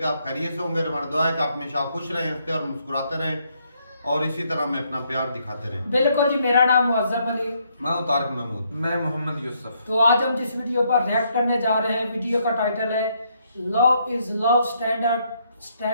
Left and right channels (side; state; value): both; inverted; correlation -0.73